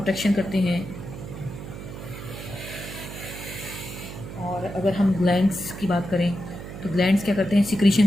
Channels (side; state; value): right; noise; hum, 10 dB below the sound